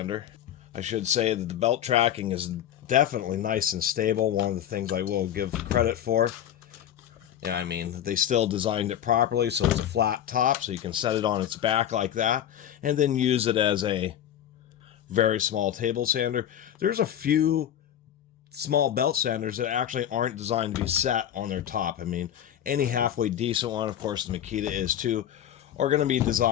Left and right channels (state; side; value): quieter; right; 10.6 dB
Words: I should say that the belt tracking is definitely nice and stable. One of the things I will give credit for. Yeah, I mean, they still designed it properly, so it's a flat top, so you can set it on its back like that, and then use it as a very small table sander. There's a few small belt sanders that actually aren't designed to be set on their top. I mean, any halfway decent one, of course the Makita is too, are going to be